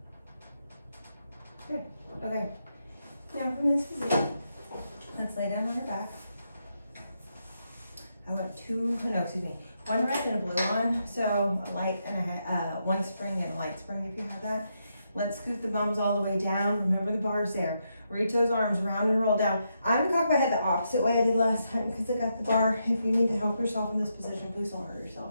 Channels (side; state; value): both; inverted; correlation -0.81